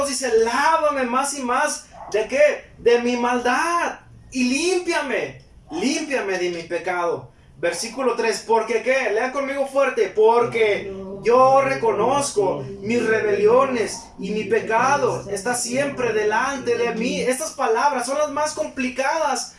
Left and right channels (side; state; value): both; identical; correlation 1.00